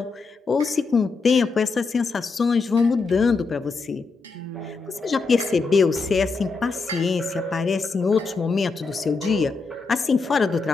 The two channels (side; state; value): right; quieter; 4.3 dB